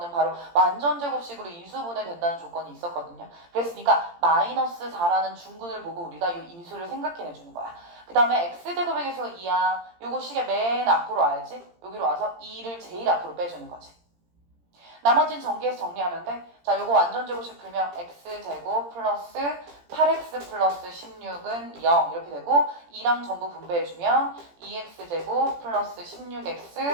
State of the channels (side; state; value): left; late; 17 ms